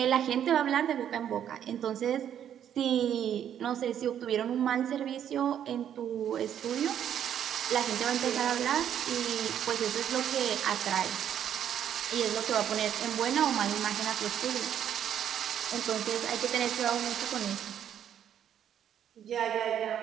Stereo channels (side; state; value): left; quieter; 9.7 dB